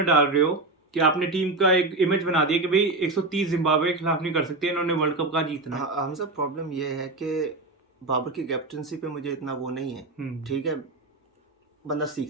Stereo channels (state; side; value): quieter; left; 3.1 dB